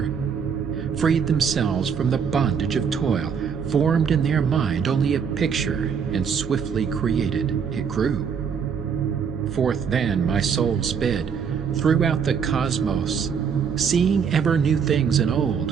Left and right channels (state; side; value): quieter; left; 6.7 dB